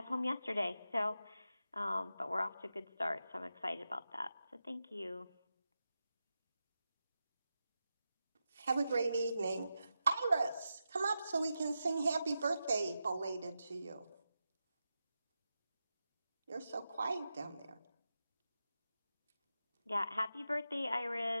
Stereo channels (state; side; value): inverted; both; correlation -0.90